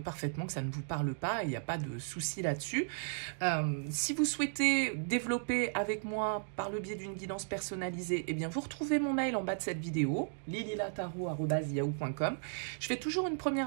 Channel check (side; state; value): left; silent; digital silence